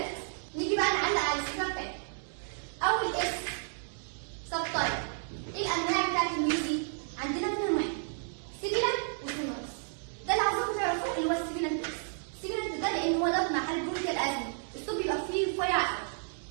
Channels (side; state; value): left; silent; digital silence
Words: نيجي بقى نعلق على الفكره بتاعتها. اول اس سبتايب. ايه الانواع بتاعت الميوزي؟ عندنا ثلاث انواع، سيبيلانت وسونورس. ده اللي عاوزاكم تعرفوه اللي هو السيبيلانت. السيبيلانت ده لان هو ده مع حاله برونكيال ازمه الصوت بيبقى فيه رفيع قوي،